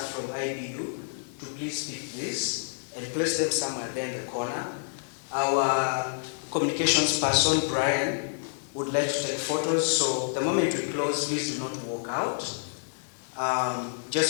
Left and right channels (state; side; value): silent; right; digital silence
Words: from IBU to please pick this and place them somewhere there in the corner. Our communications person, Brian, would like to take photos. So the moment we close, please do not walk out.